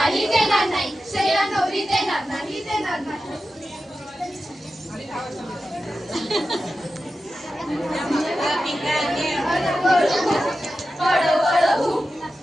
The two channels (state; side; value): normal; both; correlation 0.92